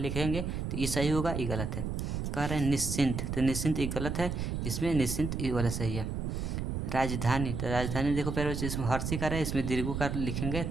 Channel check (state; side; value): noise; right; rumble, 2 dB below the sound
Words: तो ये सही होगा, ये गलत है। कह रहा है निश्चिंत, तो निश्चिंत ये गलत है, इसमें निश्चिंत ये वाला सही है। राजधानी, तो राजधानी देखो प्यारे बच्चों, इसमें हर्षिकार है, इसमें दीर्घुकार लिखेंगे